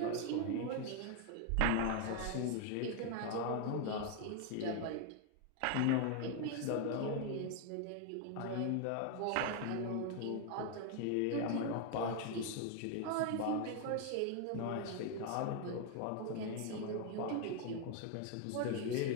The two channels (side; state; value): both; different; correlation 0.01